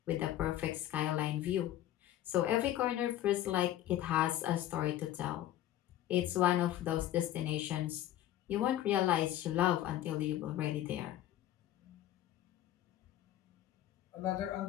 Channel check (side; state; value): right; quieter; 12.8 dB